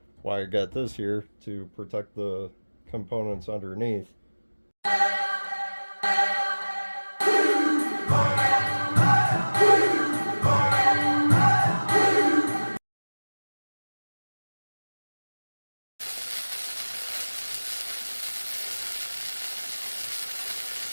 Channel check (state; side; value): inverted; both; correlation -1.00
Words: why I got this here to protect the components underneath.